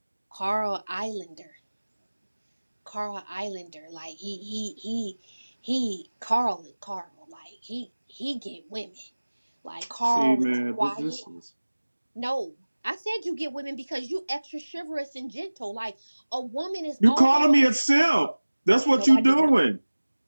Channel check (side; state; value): both; inverted; correlation -1.00